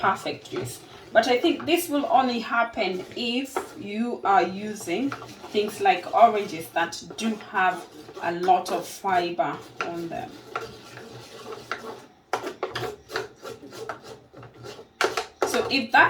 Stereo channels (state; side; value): identical; both; correlation 1.00